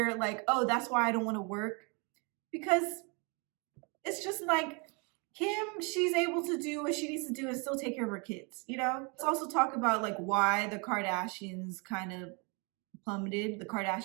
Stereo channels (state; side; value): quieter; left; 32.9 dB